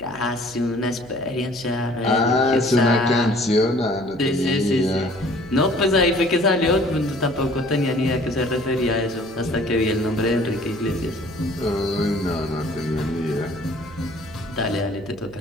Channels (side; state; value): right; noise; hum, 20 dB below the sound